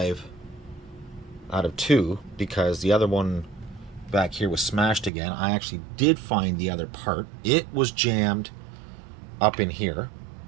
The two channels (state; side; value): drops out; left; at 5.1 s